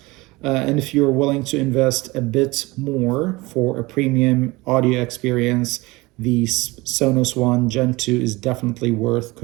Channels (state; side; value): quieter; left; 22.3 dB